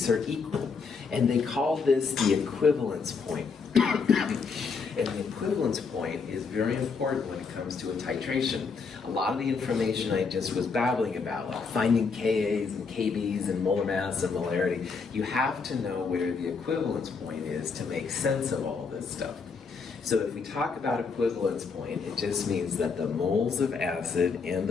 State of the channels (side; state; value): right; quieter; 5.1 dB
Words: are equal. And they call this the equivalence point. And the equivalence point is very important when it comes to a titration. A lot of the information I just was babbling about, like finding Kas and Kbs and molar mass and molarity, you have to know where the equivalence point is to make sense of all this stuff. So if we talk about equivalence point, it just means that the moles of acid and